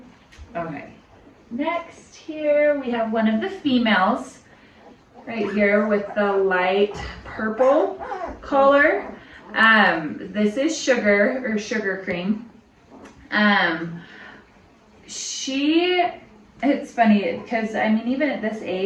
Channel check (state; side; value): identical; both; correlation 1.00